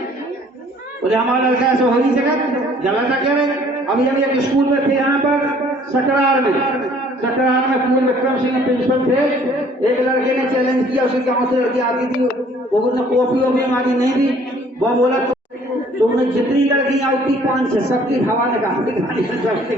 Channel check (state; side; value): normal; both; correlation 0.57